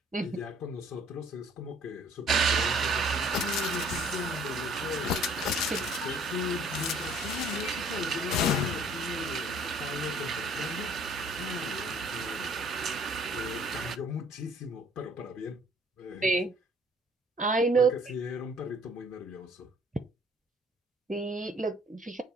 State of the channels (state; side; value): normal; both; correlation 0.57